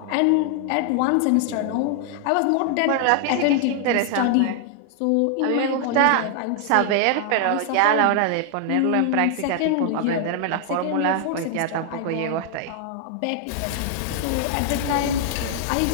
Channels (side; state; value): both; different; correlation 0.00